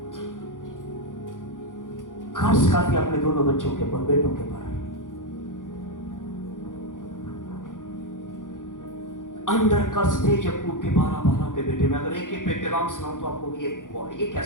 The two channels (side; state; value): right; late; 0.88 ms